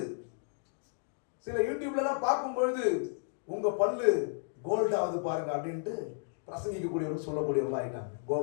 சில யூடியூப்ல எல்லாம் பார்க்கும் பொழுது உங்க பல்லு கோல்டாவது பாருங்க அப்படின்ட்டு பிரசங்கிக்கக்கூடியவர்கள் சொல்லக்கூடியவர்களா ஆயிட்டாங்க.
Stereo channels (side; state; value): right; silent; digital silence